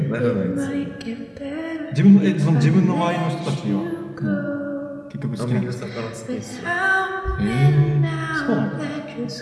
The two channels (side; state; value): both; identical; correlation 1.00